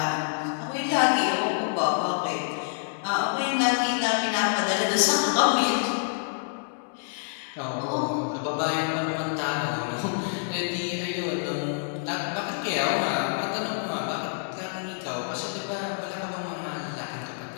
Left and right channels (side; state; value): right; silent; digital silence